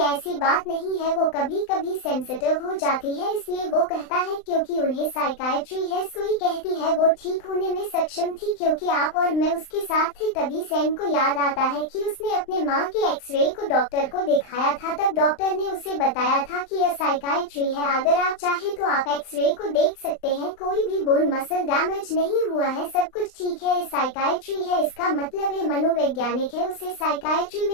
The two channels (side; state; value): right; late; 39 ms